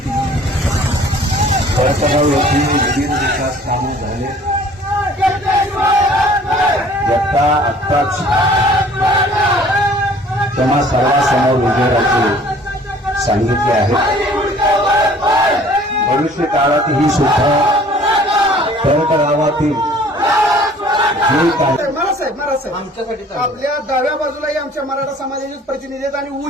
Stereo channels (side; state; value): both; normal; correlation 0.52